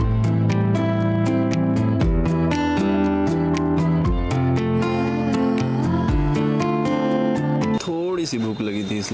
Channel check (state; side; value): identical; both; correlation 1.00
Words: थोड़ी सी भूख लगी थी